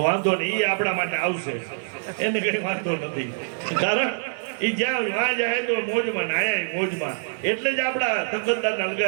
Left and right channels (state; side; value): silent; left; digital silence